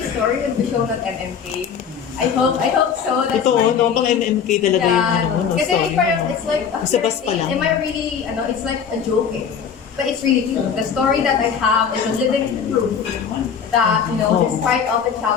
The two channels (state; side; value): quieter; right; 7.1 dB